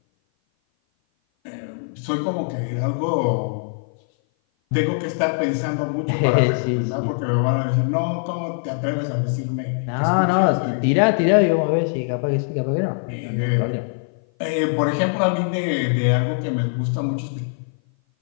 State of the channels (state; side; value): silent; right; 56 dB below the other